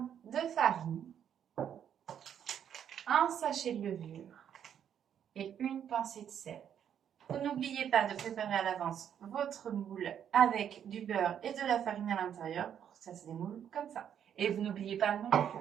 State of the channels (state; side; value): quieter; left; 9.0 dB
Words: de farine, un sachet de levure et une pincée de sel. Vous n'oubliez pas de préparer à l'avance votre moule avec du beurre et de la farine à l'intérieur pour que ça se démoule comme ça. Et vous n'oubliez pas non